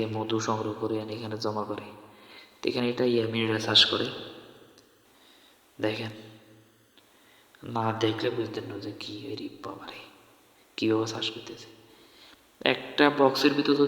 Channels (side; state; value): both; identical; correlation 1.00